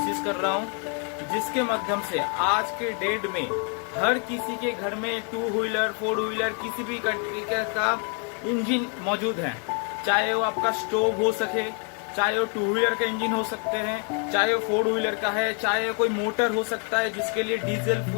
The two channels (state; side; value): quieter; right; 40.0 dB